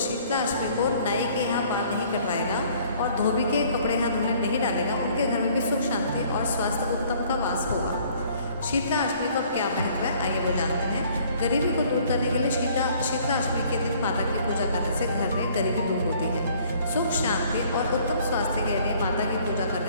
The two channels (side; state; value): both; inverted; correlation -0.58